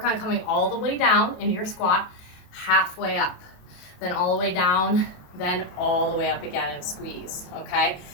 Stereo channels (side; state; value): right; late; 28 ms